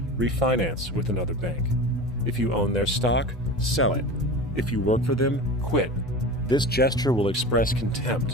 refinance with another bank. If you own their stock, sell it. If you work for them, quit. This gesture will express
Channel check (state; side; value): normal; both; correlation 0.32